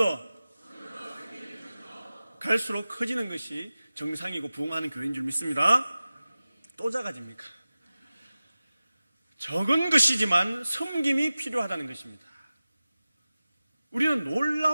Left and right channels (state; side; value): inverted; both; correlation -0.96